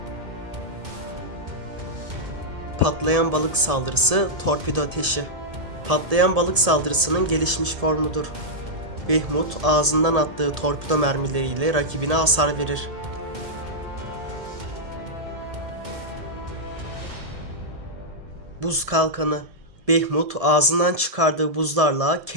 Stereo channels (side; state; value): left; late; 1.7 ms